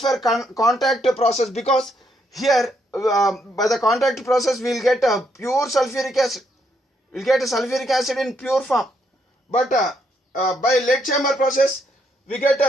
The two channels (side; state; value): both; normal; correlation 0.75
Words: contact process, because here by the contact process we will get a pure sulfuric acid. We will get a sulfuric acid in pure form. But by lead chamber process we get